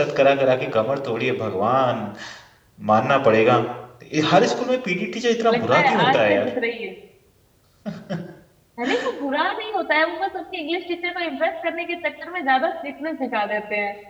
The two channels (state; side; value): identical; both; correlation 1.00